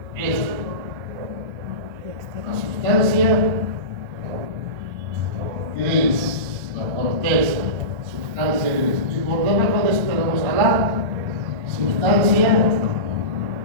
esto, la sustancia gris, la corteza, sustancia gris. Y por debajo de eso tenemos a la sustancia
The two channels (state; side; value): late; left; 1.3 ms